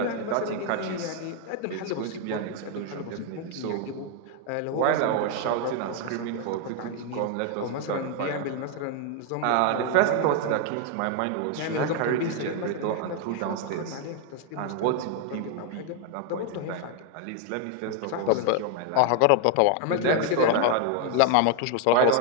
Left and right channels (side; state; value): both; different; correlation 0.00